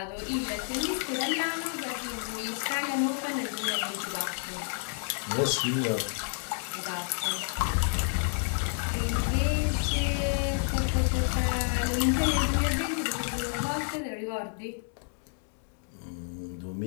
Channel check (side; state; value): right; silent; 58 dB below the other